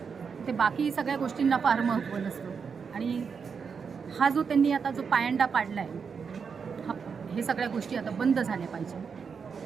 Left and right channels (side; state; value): left; quieter; 6.0 dB